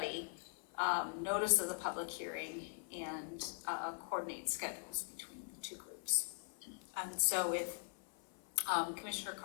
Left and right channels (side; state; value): right; silent; 50 dB below the other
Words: notice of the public hearing, and coordinate schedules between the two groups. And so if Commissioner